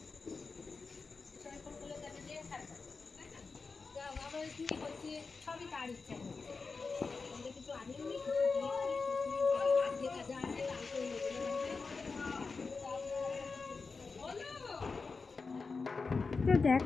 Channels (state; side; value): quieter; right; 4.5 dB